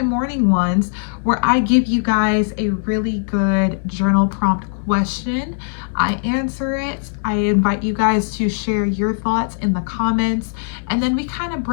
morning ones where I give you guys a really good journal prompt question. I answer it. I invite you guys to share your thoughts in the comments, and then we kind of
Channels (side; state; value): right; silent; digital silence